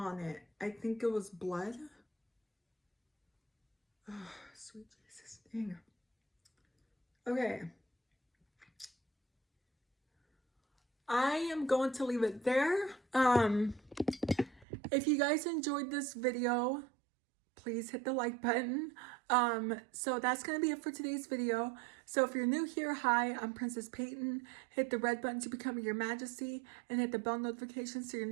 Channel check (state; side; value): drops out; left; at 14.7 s